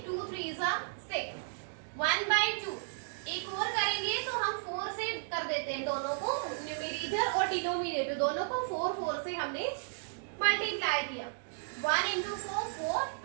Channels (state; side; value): silent; left; digital silence